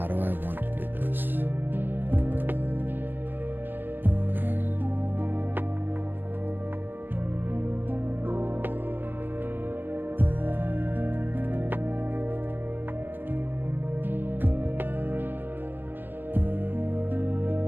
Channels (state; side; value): late; left; 0.095 ms